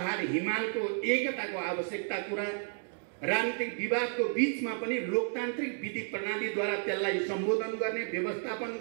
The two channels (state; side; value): silent; left; 56 dB below the other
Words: हिमालको एकताको आवश्यकता कुरा, राजनीतिक विवादको बीचमा पनि लोकतान्त्रिक विधि प्रणालीद्वारा त्यसलाई सम्बोधन गर्ने, व्यवस्थापन